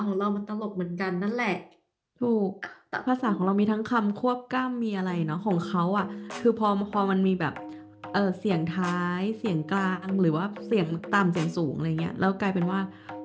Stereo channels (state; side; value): identical; both; correlation 1.00